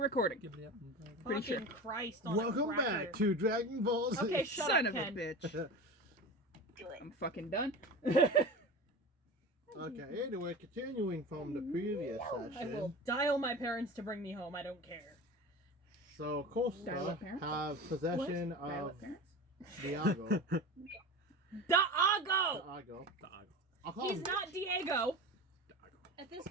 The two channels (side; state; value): both; normal; correlation 0.31